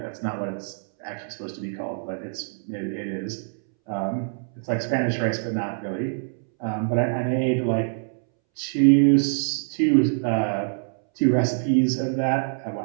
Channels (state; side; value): silent; left; 62 dB below the other